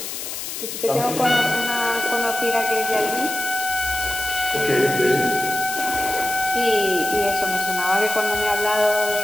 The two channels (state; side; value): noise; left; hiss, 7 dB below the sound